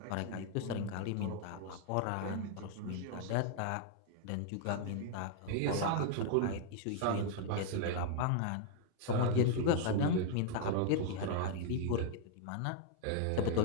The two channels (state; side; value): different; both; correlation 0.00